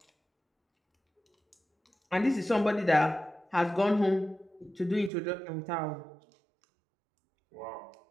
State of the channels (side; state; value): left; drops out; at 5.1 s